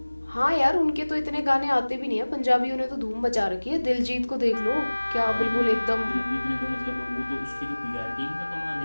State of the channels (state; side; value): inverted; both; correlation -1.00